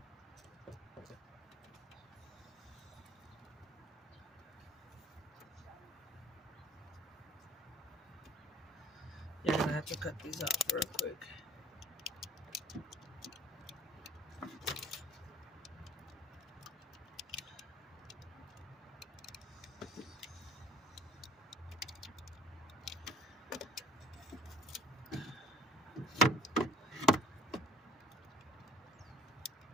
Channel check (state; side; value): normal; both; correlation 0.52